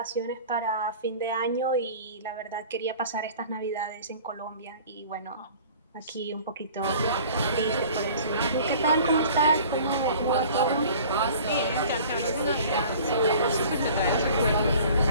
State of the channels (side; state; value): both; inverted; correlation -0.46